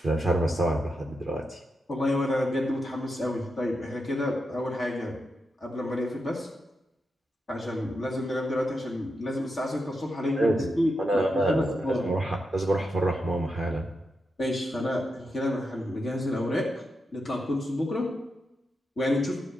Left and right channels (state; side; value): normal; both; correlation 0.86